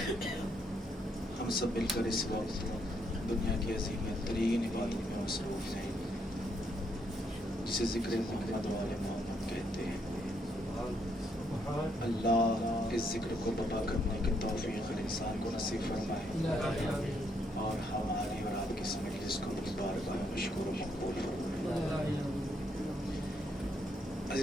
ہم سب مل کر اس وقت دنیا کی عظیم ترین عبادت میں مصروف ہیں جسے ذکر محمد و آل محمد کہتے ہیں. اللہ اس ذکر کو بپا کرنے کی توفیق ہر انسان کو نصیب فرمائے اور ہماری اور آپ کی اس مجلس کو اپنی بارگاہ میں مشکور و مقبول فرمائے.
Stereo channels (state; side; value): normal; both; correlation 0.74